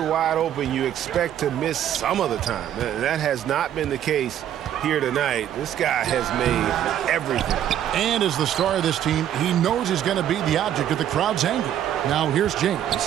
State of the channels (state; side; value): quieter; left; 10.7 dB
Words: wide open, you expect to miss some of the time. That has not been the case here tonight. This guy has made everything. And as the star of this team, he knows he's going to be the object of the crowd's anger. Now here's